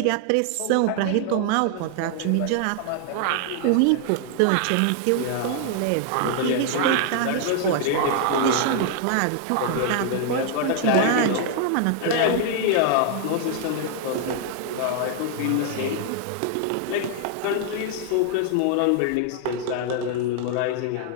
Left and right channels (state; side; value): different; both; correlation 0.00